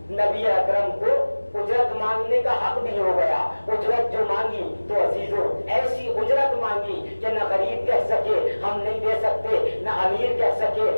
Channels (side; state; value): both; inverted; correlation -1.00